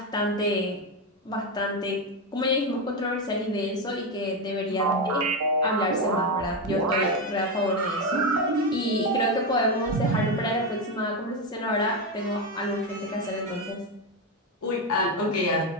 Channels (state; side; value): normal; both; correlation 0.10